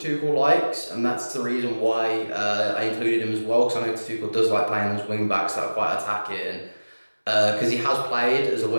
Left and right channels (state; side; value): inverted; both; correlation -1.00